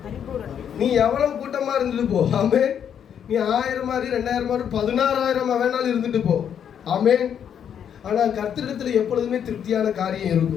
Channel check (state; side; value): quieter; right; 8.6 dB